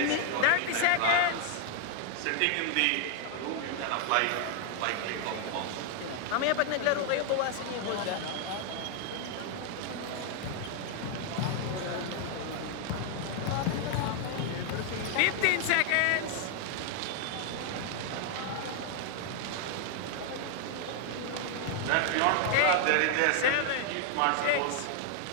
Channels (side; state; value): both; different; correlation 0.00